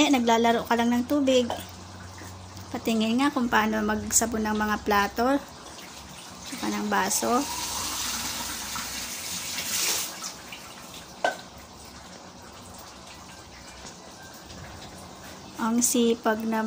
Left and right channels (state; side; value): identical; both; correlation 1.00